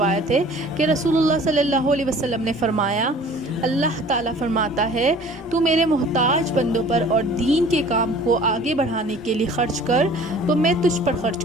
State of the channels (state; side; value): normal; both; correlation 0.48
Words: ہے کہ رسول اللہ صلی اللہ علیہ وسلم نے فرمایا، اللہ تعالیٰ فرماتا ہے، تو میرے محتاج بندوں پر اور دین کے کام کو آگے بڑھانے کے لیے خرچ کر تو میں تجھ پر